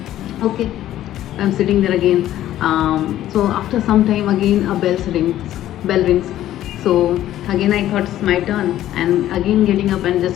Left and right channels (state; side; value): quieter; right; 13.0 dB